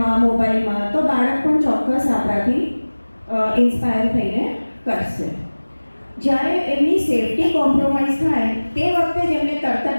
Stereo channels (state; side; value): inverted; both; correlation -1.00